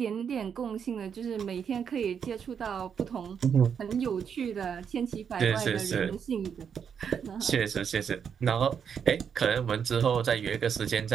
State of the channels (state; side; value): quieter; left; 7.3 dB